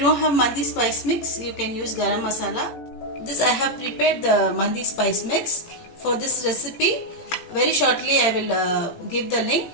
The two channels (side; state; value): right; late; 18 ms